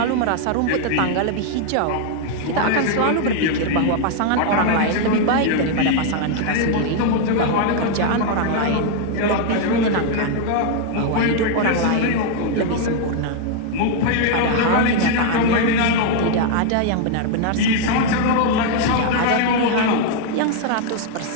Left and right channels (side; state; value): both; different; correlation 0.00